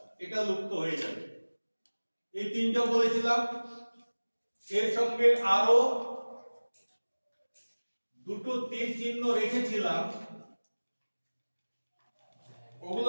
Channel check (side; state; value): both; inverted; correlation -1.00